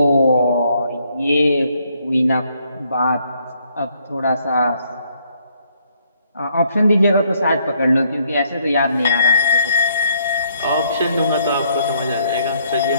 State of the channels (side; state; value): both; inverted; correlation -0.70